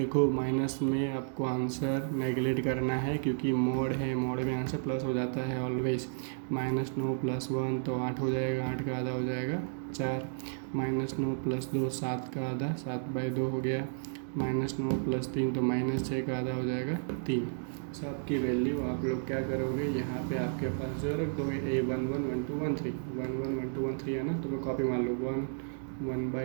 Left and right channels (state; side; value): silent; left; 56 dB below the other